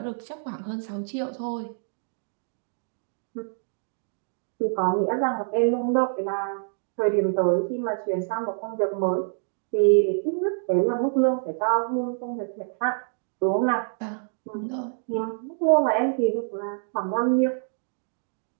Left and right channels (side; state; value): left; silent; digital silence